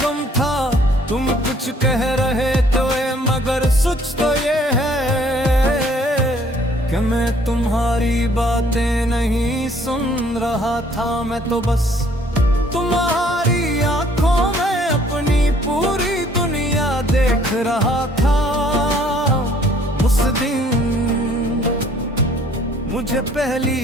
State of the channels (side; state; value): both; normal; correlation 0.60